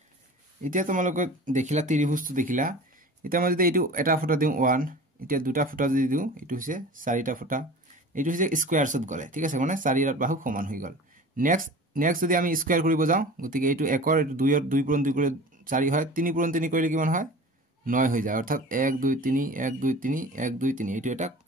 এতিয়া তোমালোকে দেখিলা ত্ৰিভুজটো দেখিলা এটা মই যদি এইটো এটা ফুটা দিও 1 এতিয়া দুটা ফুটা যদি দিও এইটো হৈছে চাৰিটা ফুটা এইটো হৈছে স্কয়াৰছত গলে ঠিক আছে মানে 4 এৰ বাহু সমান হৈ গল নেক্সট যদি আমি স্কয়াৰ কৰিব যাও গতিকে এইটো 1 এৰ 2 এৰ 2 পূৰণ 2 কৰি 4 হয় 3 পূৰণ 3 কৰিলে কিমান হয় 9 হৈ যায় অৰ্থাৎ 1 2 3 1 2 3 1 2 3 এইটো এটা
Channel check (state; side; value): normal; both; correlation 0.39